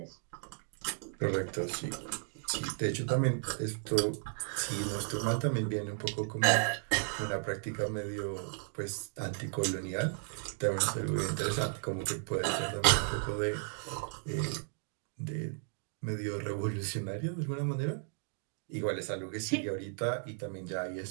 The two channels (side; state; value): left; silent; 55 dB below the other